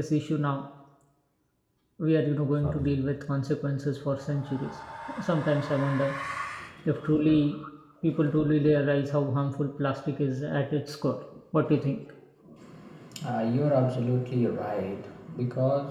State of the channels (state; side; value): identical; both; correlation 1.00